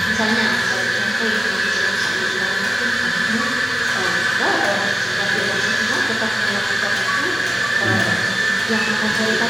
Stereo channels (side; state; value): both; normal; correlation 0.96